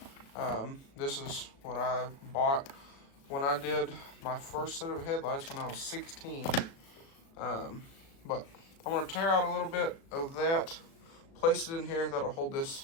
This is what I bought when I did my first set of headlights when I was 16. But I'm going to tear out a little bit of that, place it in here. That'll hold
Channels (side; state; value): right; late; 36 ms